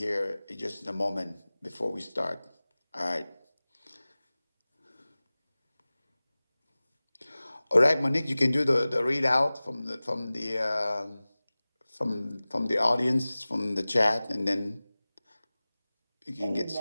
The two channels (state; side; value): inverted; both; correlation -0.98